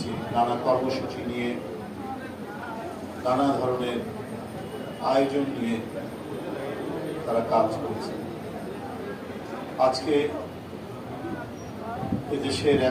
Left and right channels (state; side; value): identical; both; correlation 1.00